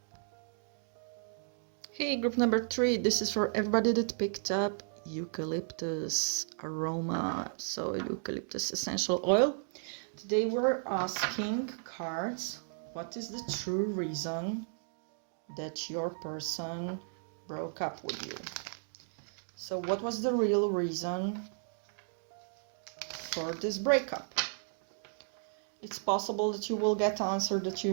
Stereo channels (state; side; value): silent; left; digital silence